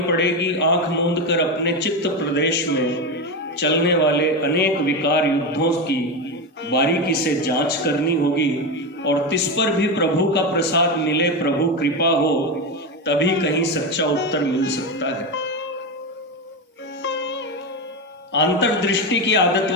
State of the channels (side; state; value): both; normal; correlation 0.15